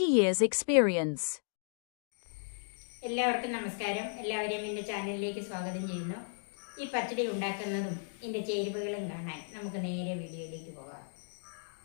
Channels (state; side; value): silent; right; digital silence